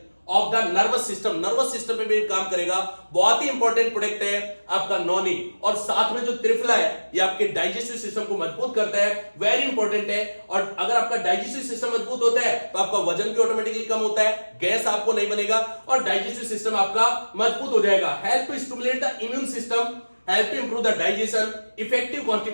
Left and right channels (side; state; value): both; inverted; correlation -1.00